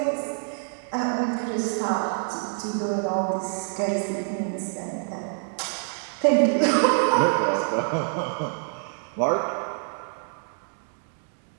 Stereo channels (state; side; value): silent; left; 60 dB below the other